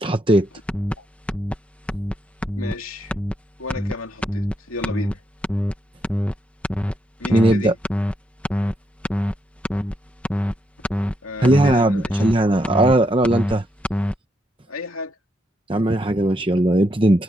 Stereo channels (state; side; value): normal; both; correlation 0.78